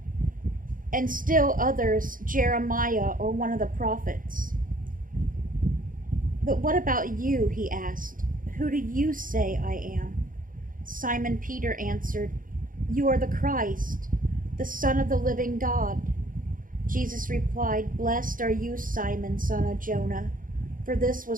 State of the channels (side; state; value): left; late; 0.40 ms